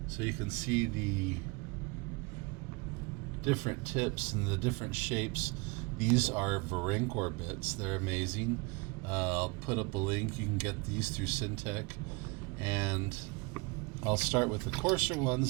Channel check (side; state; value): left; quieter; 27.4 dB